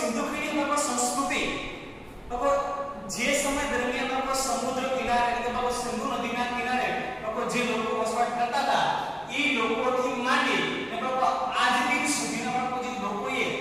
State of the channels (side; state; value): both; identical; correlation 1.00